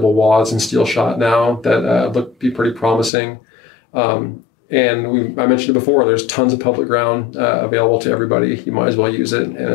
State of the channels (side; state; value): right; drops out; at 3.1 s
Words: wads and steel shot now that look be pretty promising. And I mentioned it before, there's tons of public ground available to everybody. You might as well use it, and